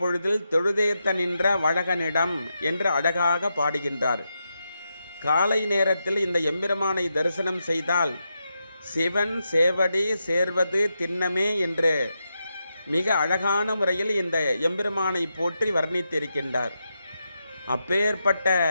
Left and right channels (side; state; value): both; inverted; correlation -0.86